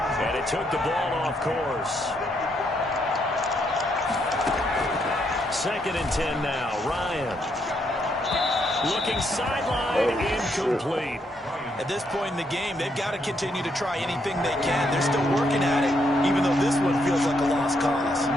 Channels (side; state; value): both; normal; correlation 0.75